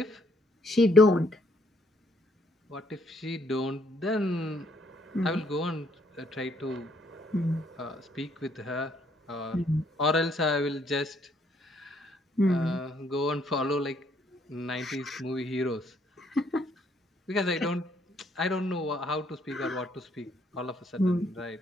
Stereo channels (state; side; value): normal; both; correlation 0.68